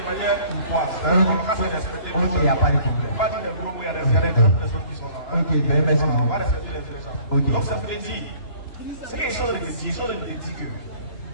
manière courtoise. On va se respecter. Ok, il n'y a pas de On problème. va dire des groupes où il y a des personnes qui sont là. Ok, ben merci. Voilà, on va respecter les gens. Ok. Donc ça veut dire, ce qu'ils sont en train de dire, ils sont en train de dire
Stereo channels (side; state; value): right; late; 3.0 ms